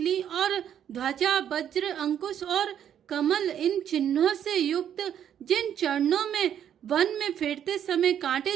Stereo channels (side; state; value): left; quieter; 9.6 dB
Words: और ध्वजा वज्र अंकुश और कमल इन चिन्हों से युक्त जिन चरणों में वन में फिरते समय